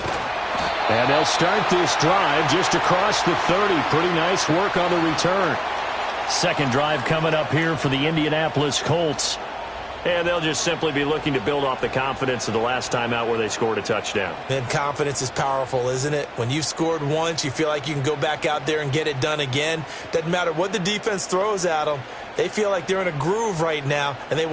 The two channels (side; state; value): both; identical; correlation 1.00